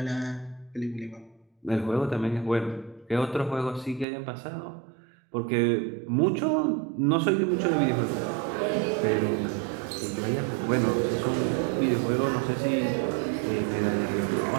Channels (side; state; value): left; drops out; at 4.0 s